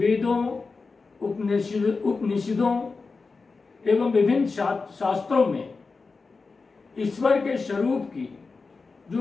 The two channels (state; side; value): quieter; right; 4.3 dB